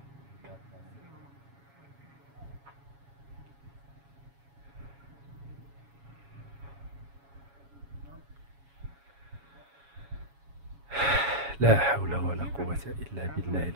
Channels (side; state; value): left; late; 7.2 ms